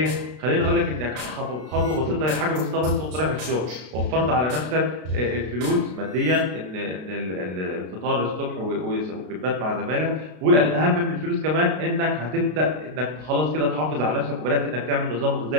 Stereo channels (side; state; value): left; late; 32 ms